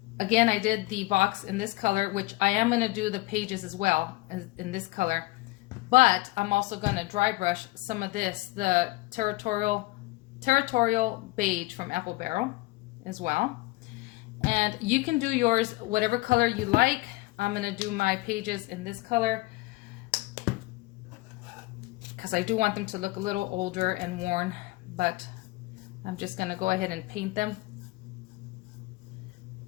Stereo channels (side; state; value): right; quieter; 21.1 dB